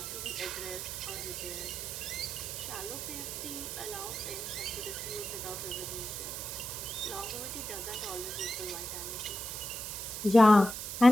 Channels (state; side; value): noise; right; hiss, 6 dB below the sound